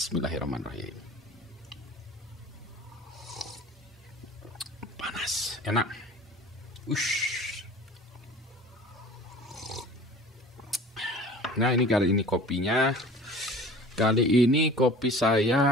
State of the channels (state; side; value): normal; both; correlation 0.43